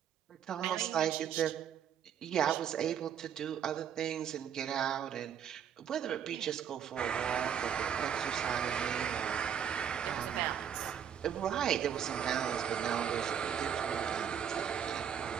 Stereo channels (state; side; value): quieter; left; 8.6 dB